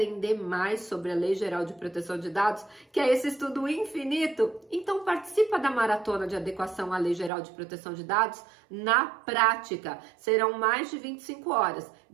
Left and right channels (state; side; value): drops out; left; at 7.3 s